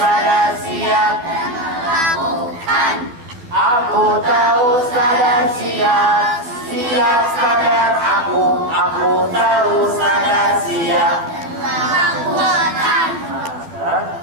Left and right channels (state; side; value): late; left; 12 ms